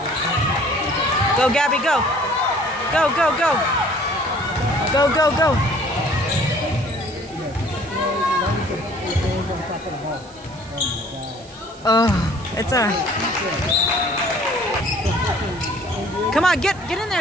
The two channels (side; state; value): right; noise; hiss, 24 dB below the sound